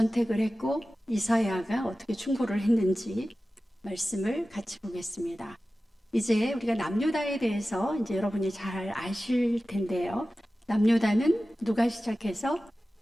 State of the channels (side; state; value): both; normal; correlation 0.95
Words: 했고 이사야가 어떻게 충고를 했는지 말씀을 같이 보겠습니다. 이제 우리가 남유다에 대해서 이제 여러분이 잘 아실 텐데요. 남유다는 누가 시작해서